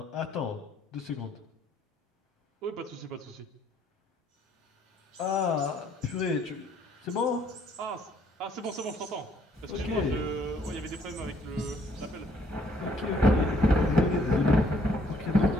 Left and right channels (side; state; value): both; normal; correlation 0.65